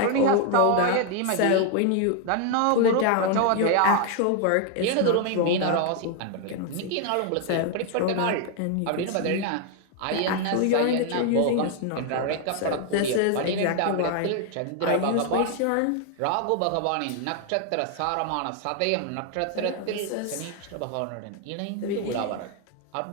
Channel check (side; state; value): both; different; correlation 0.00